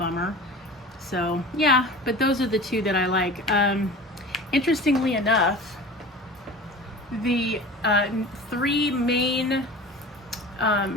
So yeah, but those are the two that I like. Interestingly enough, the 3 main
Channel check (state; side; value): normal; both; correlation 0.37